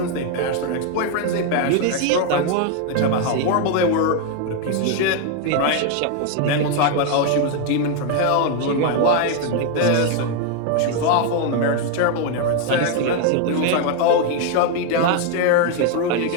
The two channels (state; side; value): different; both; correlation 0.01